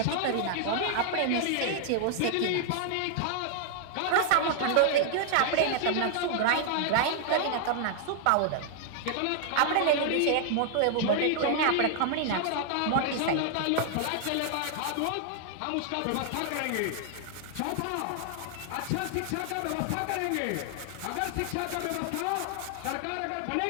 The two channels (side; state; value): both; different; correlation 0.00